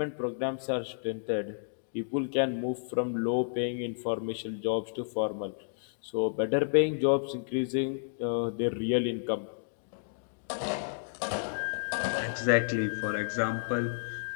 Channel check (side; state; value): right; silent; digital silence